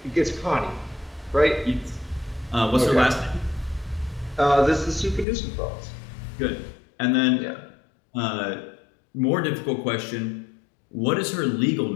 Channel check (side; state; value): right; drops out; at 5.2 s